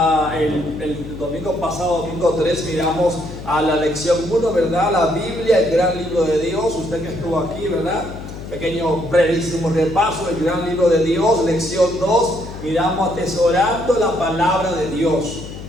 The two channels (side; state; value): left; noise; hum, 11 dB below the sound